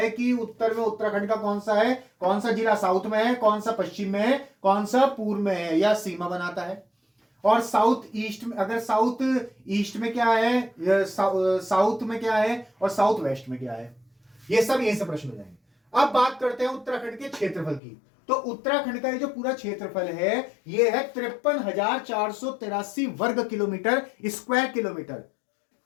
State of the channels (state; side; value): drops out; right; at 17.8 s